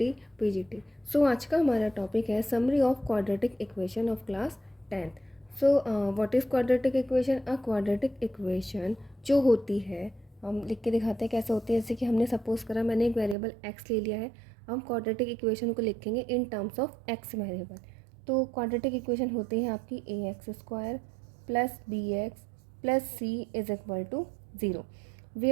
PGT. So आज का हमारा topic है summary of quadratic equation of class 10th। So what is quadratic equation? A quadratic equation जो होती है, हम लिख के दिखाते हैं कैसे होती है। जैसे कि हमने सपोज करा, मैंने एक वेरिएबल x ले लिया है, हम क्वाड्रेटिक इक्वेशन को लिखेंगे in terms of x variable. तो क्वाड्रेटिक इक्वेशन होती है आपकी ax² plus bx plus c is equal to 0,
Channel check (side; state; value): left; drops out; at 13.4 s